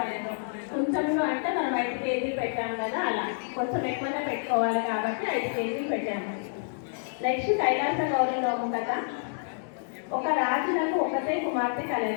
కుంచములు అంటే మనం 5 కేజీలు పెట్టాము కదా, అలా కొంచెం ఎక్కువగా పెట్టుకోవాలి కాబట్టి 5 కేజీలు పెట్టాము. నెక్స్ట్ కైలాస గౌరీ నోము కదా. ఒక రాజులకు ఒకటే కుమార్తె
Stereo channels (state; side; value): silent; right; digital silence